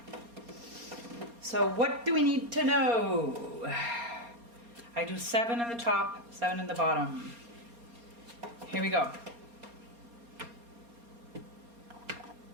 So what do we need to know? I do 7 in the top, 7 in the bottom. Here we go.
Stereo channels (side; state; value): left; late; 4.3 ms